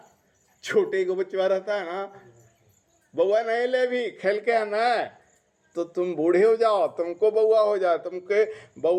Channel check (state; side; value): identical; both; correlation 1.00